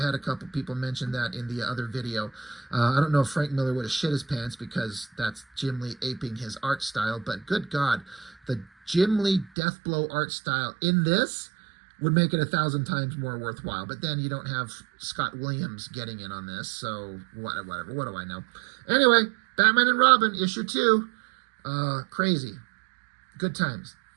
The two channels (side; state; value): left; drops out; at 9.5 s